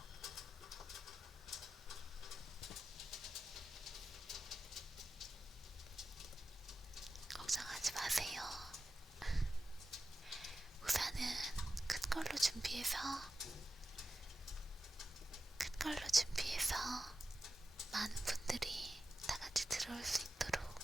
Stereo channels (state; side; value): normal; both; correlation 0.93